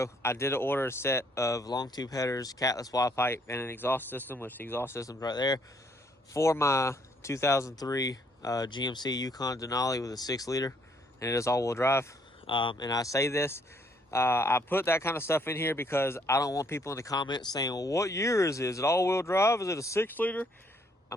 I did order a set of long tube headers, catless wide pipe, and an exhaust system, which the exhaust system's right there, for my 2003 GMC Yukon Denali with a 6-liter, and it is all-wheel drive. And I say this, I put that kind of stuff in here because I don't want people in the comments saying, well, what year is it? Is it all-wheel drive? Is it a 6-liter?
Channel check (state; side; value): normal; both; correlation 0.68